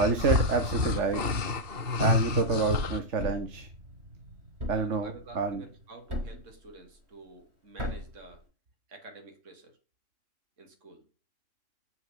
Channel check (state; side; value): late; left; 2.8 ms